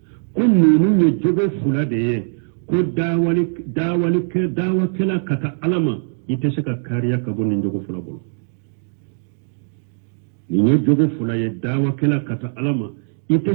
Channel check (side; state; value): left; silent; 62 dB below the other